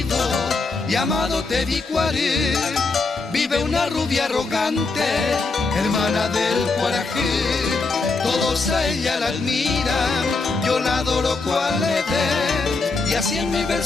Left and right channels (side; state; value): right; quieter; 3.9 dB